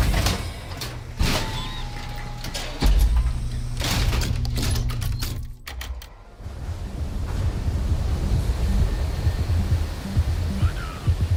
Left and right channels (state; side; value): identical; both; correlation 1.00